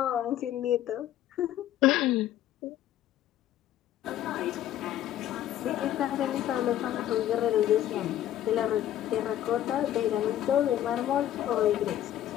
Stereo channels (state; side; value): quieter; right; 12.0 dB